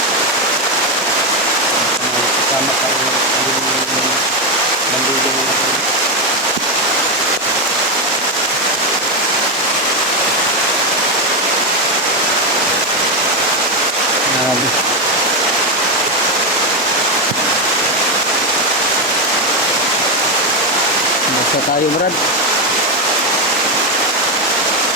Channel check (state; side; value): normal; both; correlation 0.08